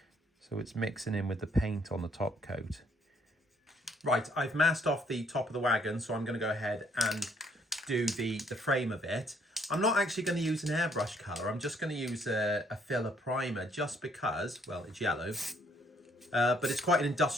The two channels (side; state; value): both; normal; correlation 0.66